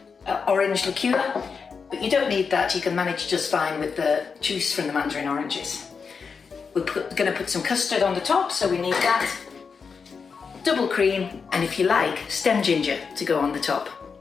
orange liqueur, but you don't need that, you can manage just fine with the juice from the mandarin oranges. We're going to put some custard on the top, so we need that, double cream, and if you like, stem ginger to go on the top.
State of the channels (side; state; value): right; quieter; 5.6 dB